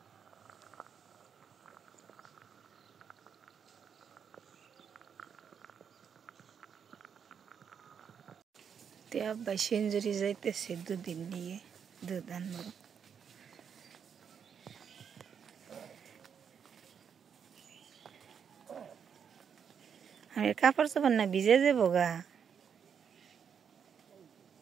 আব্বাই সেঞ্জুরি যাইতেছে দুদিন নিয়ে দুধ আনবো। আমি কাপড় চোপড় না ভিজে যাবো গা।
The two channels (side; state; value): left; quieter; 7.3 dB